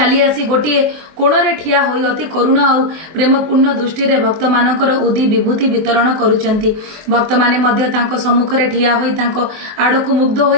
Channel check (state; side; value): late; left; 24 ms